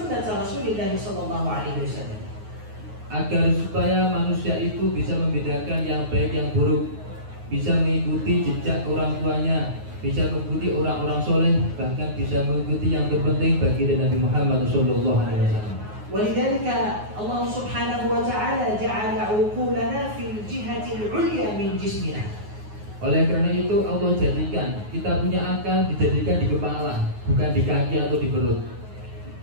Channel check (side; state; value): left; late; 9.5 ms